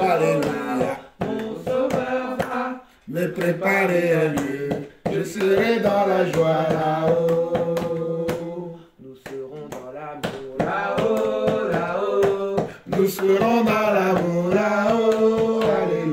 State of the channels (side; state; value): both; identical; correlation 1.00